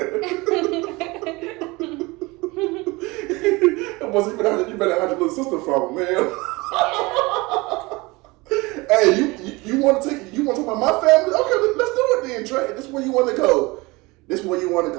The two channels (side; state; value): left; quieter; 23.6 dB